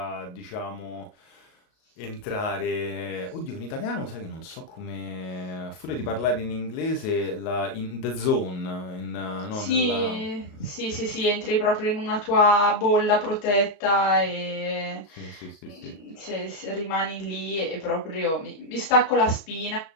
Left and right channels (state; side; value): late; right; 38 ms